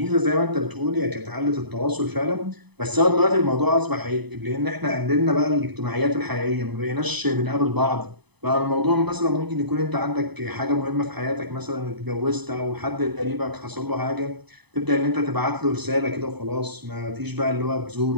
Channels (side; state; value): left; late; 0.99 ms